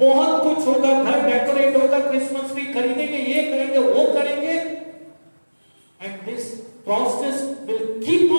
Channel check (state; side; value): inverted; both; correlation -1.00